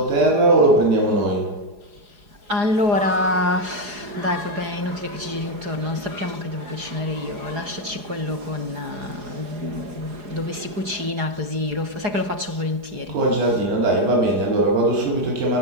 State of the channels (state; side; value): late; left; 4.8 ms